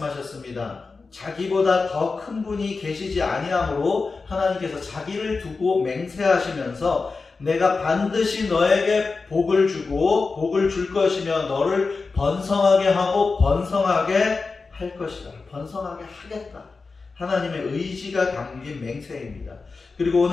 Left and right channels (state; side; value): quieter; right; 4.3 dB